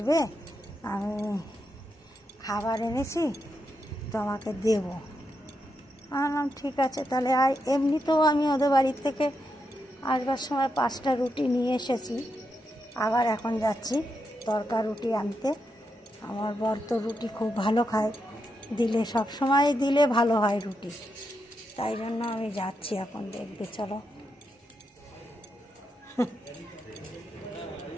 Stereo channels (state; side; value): normal; both; correlation 0.84